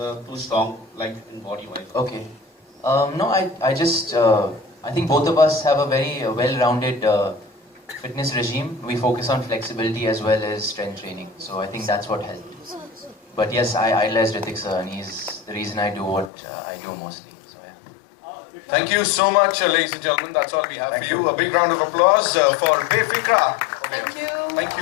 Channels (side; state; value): right; drops out; at 16.3 s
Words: are too strong, like in body wise. okay. No, I just I think both of us have a very well-rounded fitness regime. We focus on flexibility as well as strength training. So I think that's what helped. But yes, I idolize Hrithik sir, and he's the reason I do what I do mostly. So yeah. Thank you so much, ladies and gentlemen. That's all we have for you. A big round of applause for Befikra. Thank you. Thank